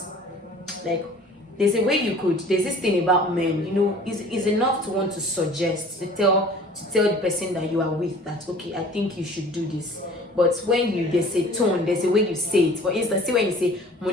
like, there's this thing about men, is enough to want to suggest, to tell the person that you are with that, okay, I think you should do this. But when there's a tone, there's a way you say it. For instance, see when you say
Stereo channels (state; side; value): normal; both; correlation 0.47